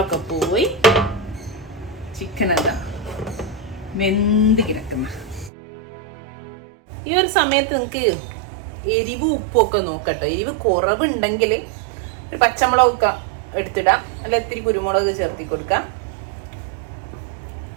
പോയി ചിക്കൻ എന്താ വെന്ത് കിടക്കുന്ന. ഈ ഒരു സമയത്ത് നിങ്ങൾക്ക് എരിവ് ഉപ്പൊക്കെ നോക്കട്ടോ. എരിവ് കുറവുണ്ടെങ്കിൽ ഒരു പച്ചമുളകൊക്കെ എടുത്തിടാം, അല്ല ഇത്തിരി കുരുമുളക് ചേർത്തി കൊടുക്കാം.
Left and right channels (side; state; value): left; drops out; at 5.5 s